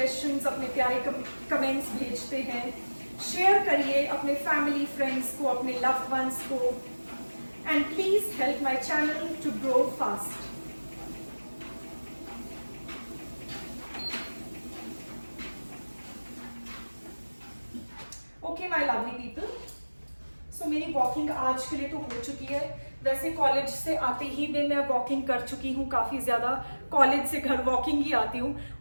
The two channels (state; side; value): inverted; both; correlation -1.00